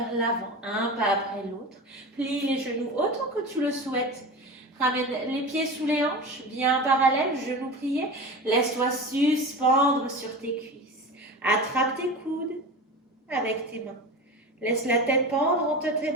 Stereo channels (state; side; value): normal; both; correlation 0.29